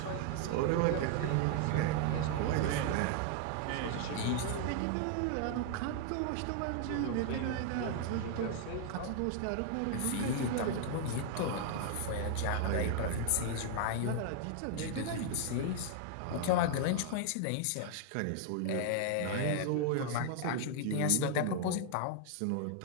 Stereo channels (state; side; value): different; both; correlation 0.00